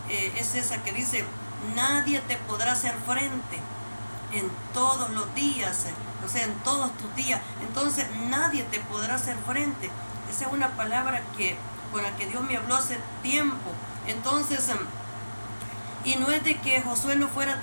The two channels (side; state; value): both; inverted; correlation -1.00